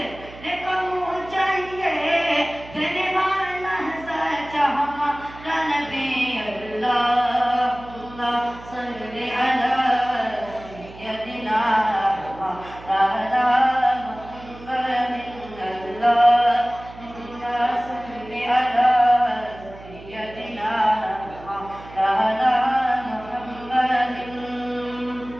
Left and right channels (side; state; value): right; noise; hum, 17 dB below the sound